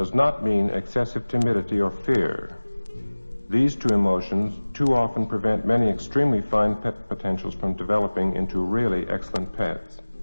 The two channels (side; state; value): both; inverted; correlation -1.00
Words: not mean excessive timidity or fear. These two emotions too often prevent many extremely fine pet potentials from developing into really excellent pets.